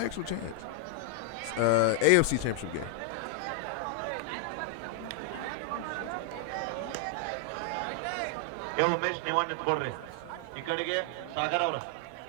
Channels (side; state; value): both; different; correlation 0.00